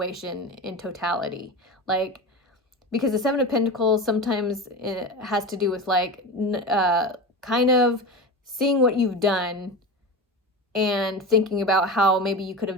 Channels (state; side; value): normal; both; correlation 0.26